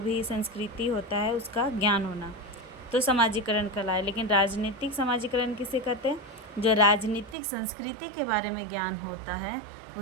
संस्कृति होता है उसका ज्ञान होना, तो समाजीकरण कहलाए। लेकिन राजनीतिक समाजीकरण किसे कहते हैं? जो राजनीतिक संस्कृति के बारे में ज्ञान होता है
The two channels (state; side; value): drops out; left; at 7.4 s